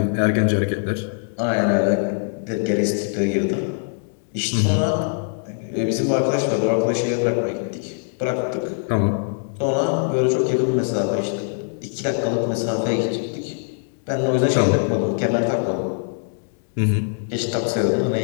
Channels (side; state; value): right; silent; digital silence